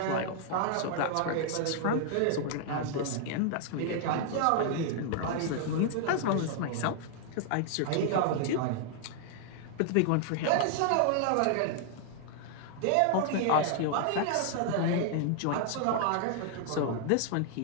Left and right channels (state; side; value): different; both; correlation 0.00